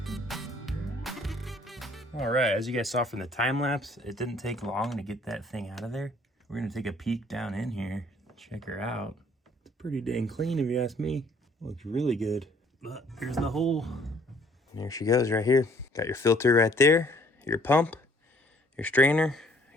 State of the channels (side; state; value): both; normal; correlation 0.60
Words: All right, as you guys saw from the time lapse, it didn't take long to get that thing out of there. We're gonna take a peek down in here, check her out. It's pretty dang clean if you ask me. Looks really good. But here's the hole. And there she goes right here. Got your filter right there, your pump, your strainer,